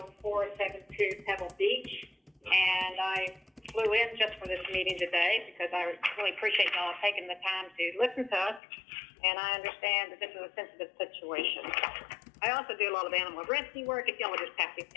Pebble Beach, and I flew in just for this meeting today because I really appreciate y'all taking the time to listen to us, and I understand that this is a sensitive situation. I also do a lot of animal rescue work, if y'all would just pass these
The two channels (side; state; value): right; drops out; at 8.6 s